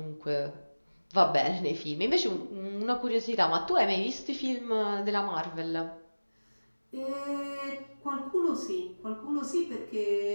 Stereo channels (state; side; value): inverted; both; correlation -1.00